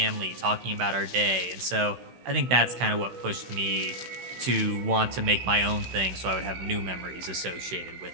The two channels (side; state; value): left; late; 16 ms